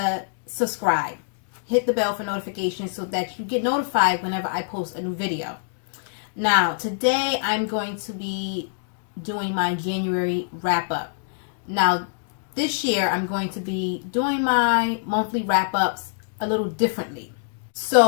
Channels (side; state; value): right; silent; digital silence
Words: subscribe. Hit the bell for notifications so that you get notified whenever I post a new video. Now, today I'm going to be doing my January wrap-up. Now, this year I'm going to be doing my monthly wrap-ups a little differently.